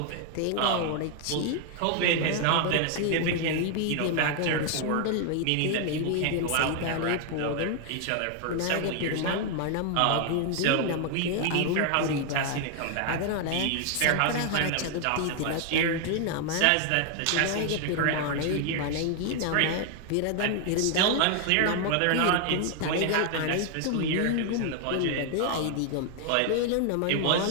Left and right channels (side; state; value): both; different; correlation 0.00